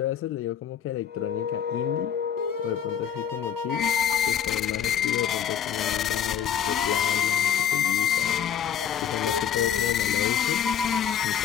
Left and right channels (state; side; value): quieter; right; 8.7 dB